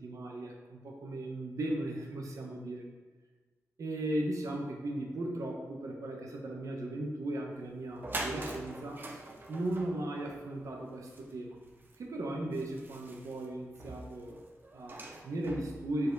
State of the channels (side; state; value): both; normal; correlation 0.83